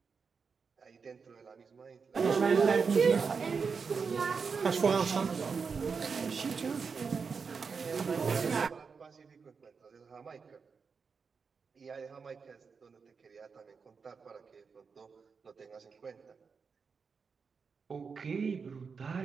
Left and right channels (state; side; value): quieter; left; 5.4 dB